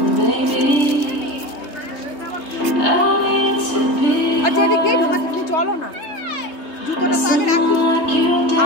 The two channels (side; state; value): right; late; 3.2 ms